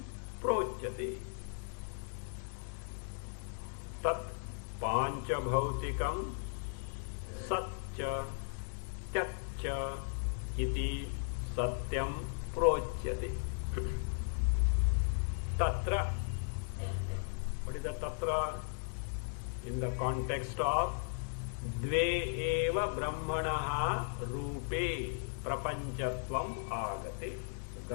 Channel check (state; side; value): silent; right; 53 dB below the other